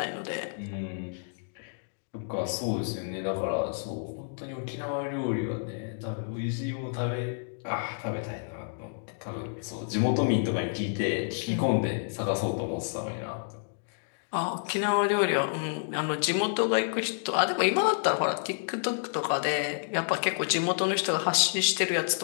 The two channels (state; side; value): silent; right; digital silence